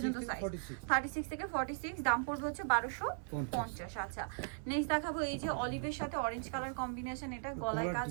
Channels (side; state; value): left; silent; 52 dB below the other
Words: সাইজ, 36 থেকে 46। দাম পড়বে হচ্ছে 1250। আচ্ছা, নেক্সট দেখাবো এই যে অলিভের সাথে অরেঞ্জ কালার কম্বিনেশন। এটা গলায় কাজ,